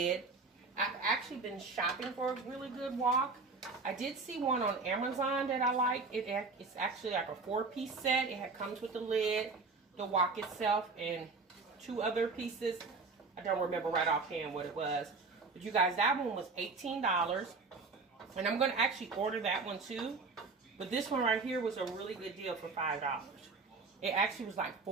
I've actually been shopping for a really good wok. I did see one on Amazon that I like. It's actually like a 4-piece set. It comes with the lid, the wok itself, and 2 other pieces. I don't remember right offhand what it was. But you guys, that one was $18. And I'm going to actually order that one too. But this one right here was a really good deal for $5. It actually was like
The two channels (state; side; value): quieter; left; 4.1 dB